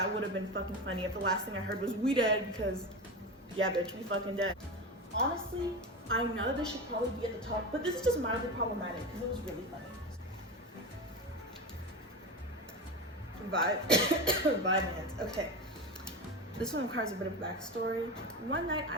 would have been fucking funny if the last thing I heard was we dead, because yeah, bitch, we fucking dead. Honestly, I know that this should probably be at the top, but this is just mildly problematic because it was really funny. Vibes. Okay. This one requires a bit of backstory. One night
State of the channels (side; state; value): both; normal; correlation 0.23